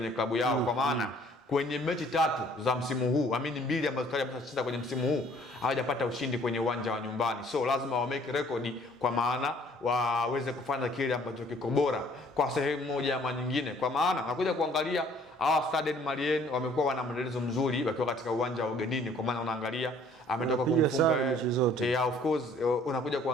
klabu yao, kwa maana kwenye mechi 3 za msimu huu, 2 ambazo tayari wameshacheza kwenye msimu huu, hawajapata ushindi kwenye uwanja wa nyumbani. So lazima wa make record, kwa maana waweze kufanya kile ambacho kiko bora kwa sehemu moja ama nyingine, kwa maana nakuja kuangalia hawa Stade Malien wamekuwa wana mwendelezo mzuri wakiwa katika uwanja wa ugenini, kwa maana unaangalia ametoka kumfunga of course unakuja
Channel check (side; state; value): both; normal; correlation 0.58